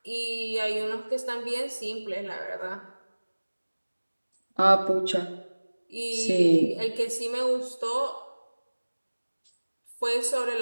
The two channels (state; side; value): inverted; both; correlation -1.00